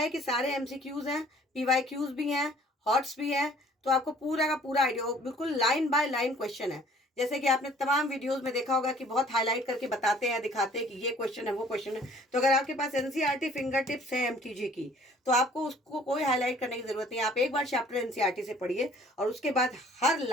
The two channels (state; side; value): normal; both; correlation 0.55